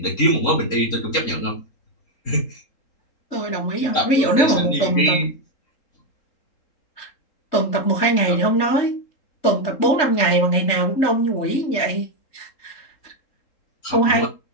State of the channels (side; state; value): right; late; 3.8 ms